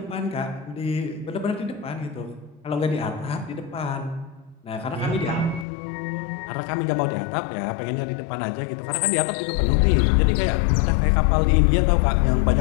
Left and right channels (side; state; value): right; drops out; at 5.7 s